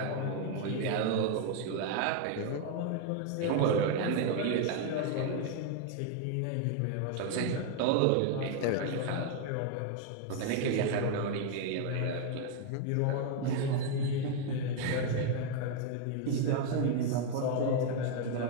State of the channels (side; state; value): both; different; correlation 0.00